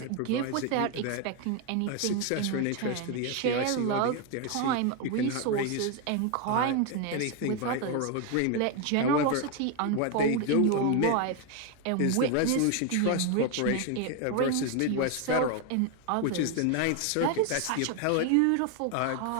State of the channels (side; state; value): both; different; correlation 0.01